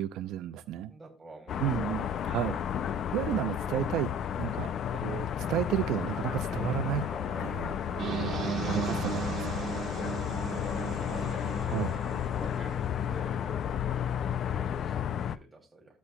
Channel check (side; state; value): both; normal; correlation 0.48